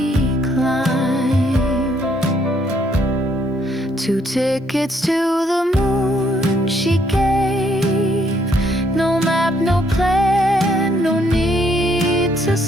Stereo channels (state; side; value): normal; both; correlation 0.69